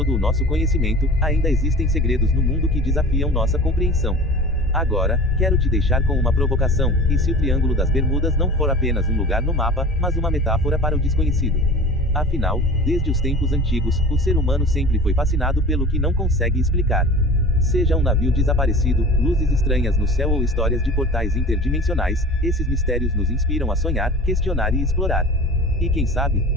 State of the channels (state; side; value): normal; both; correlation 0.37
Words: o nosso conhecimento, ainda existem segredos no mundo que desafiam nossa compreensão. Agora, quero te deixar com uma provocação: e se o Triângulo das Bermudas não for apenas um lugar no mapa, mas uma metáfora para o desconhecido? Afinal, desde os tempos antigos, o ser humano sempre foi fascinado pelo que não consegue explicar. Seja um navio desaparecido, luzes estranhas no céu ou histórias de portais interdimensionais, esses mistérios nos inspiram a sonhar, questionar e explorar. E quem sabe,